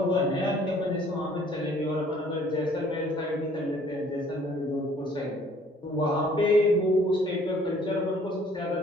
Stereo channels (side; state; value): both; normal; correlation 0.57